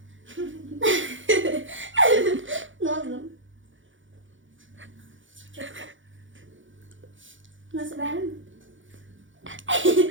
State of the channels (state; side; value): late; left; 0.56 ms